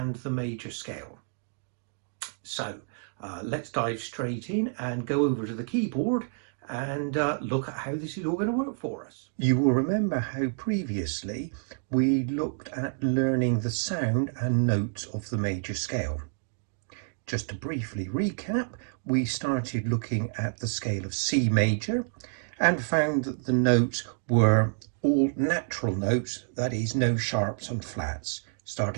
the major scale. So let's dive straight in and go over to the keyboard and look at how this is all going to work for us. You will remember how previously we looked at learning the sound and notes of the major scale. Just to briefly recap, we started looking at the scale of C major and found that the notes were all natural notes, that is, no sharps and flats,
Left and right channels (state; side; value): silent; left; digital silence